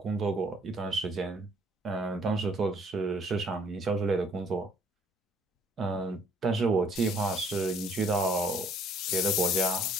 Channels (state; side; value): normal; both; correlation 0.61